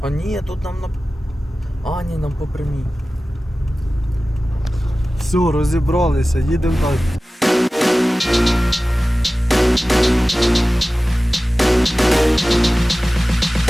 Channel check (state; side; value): normal; both; correlation 0.96